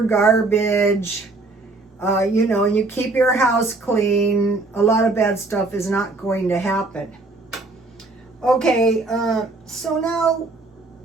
garbage, you know, and you keep your house clean. A lot of bad stuff is not going to happen. Okay, so now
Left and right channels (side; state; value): left; quieter; 3.3 dB